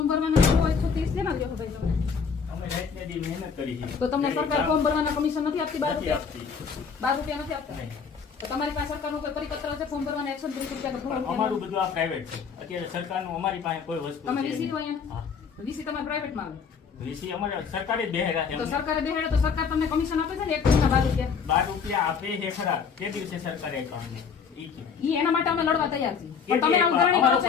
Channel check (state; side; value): quieter; right; 6.1 dB